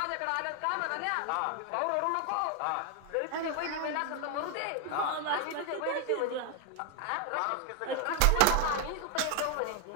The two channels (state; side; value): different; both; correlation 0.00